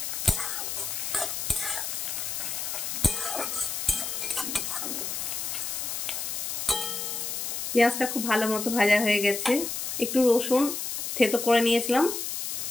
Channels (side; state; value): left; noise; hiss, 3 dB below the sound